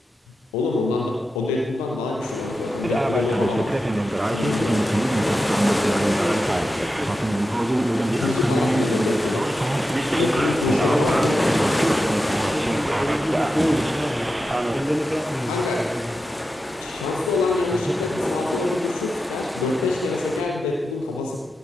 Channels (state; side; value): normal; both; correlation 0.90